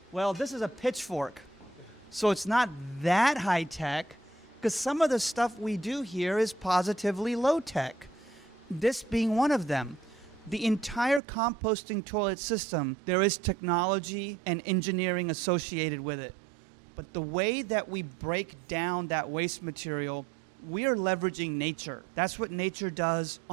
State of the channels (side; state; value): left; drops out; at 11.2 s